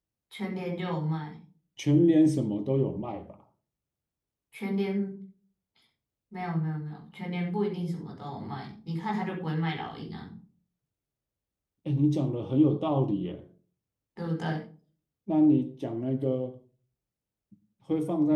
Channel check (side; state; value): both; identical; correlation 1.00